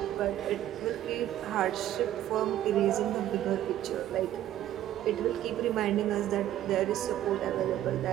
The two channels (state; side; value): quieter; left; 12.5 dB